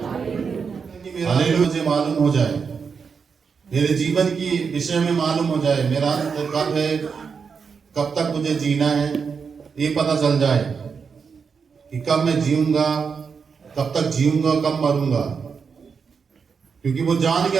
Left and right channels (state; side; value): quieter; left; 5.8 dB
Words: हालेलुया। मुझे मालूम हो जाए, मेरे जीवन की विषय में मालूम हो जाए, मेरा अंत कब है, कब तक मुझे जीना है, ये पता चल जाए कि कब मैं जीऊंगा, कब तक जीऊंगा, कब मरूंगा। क्योंकि वो जान